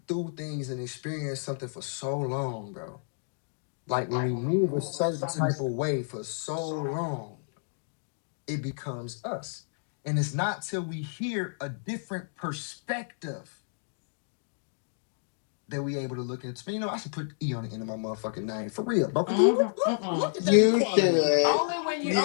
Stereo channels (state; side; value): silent; right; digital silence